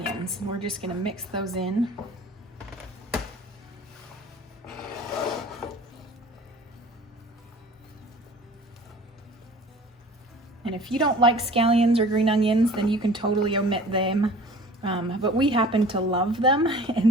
And we're just going to mix those in. And if you don't like scallions or green onions, then you can totally omit them. But we happen to love them,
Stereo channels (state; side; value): normal; both; correlation 0.45